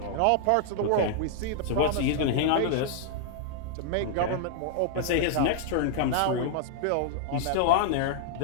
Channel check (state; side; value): different; both; correlation -0.01